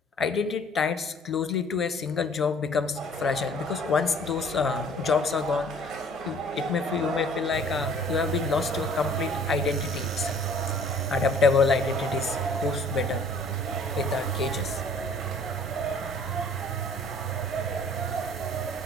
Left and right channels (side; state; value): both; normal; correlation 0.54